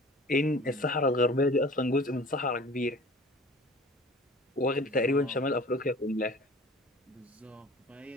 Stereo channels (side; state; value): both; normal; correlation 0.44